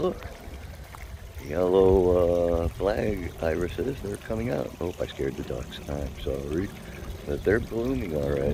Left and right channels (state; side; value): identical; both; correlation 1.00